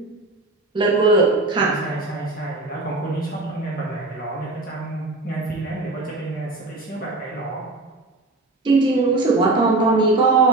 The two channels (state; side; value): quieter; left; 3.1 dB